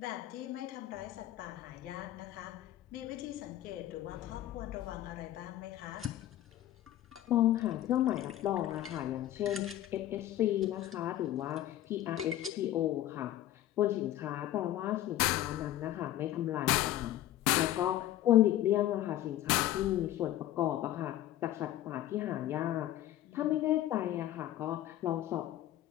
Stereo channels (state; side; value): quieter; right; 13.3 dB